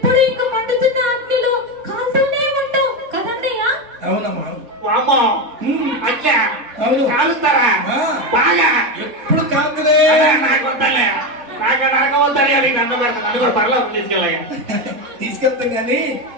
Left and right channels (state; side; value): late; left; 4.2 ms